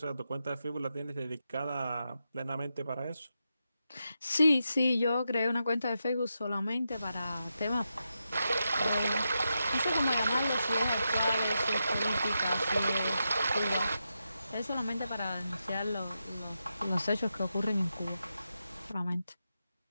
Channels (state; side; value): inverted; both; correlation -0.87